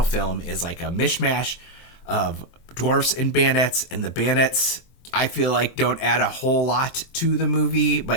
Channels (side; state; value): right; late; 23 ms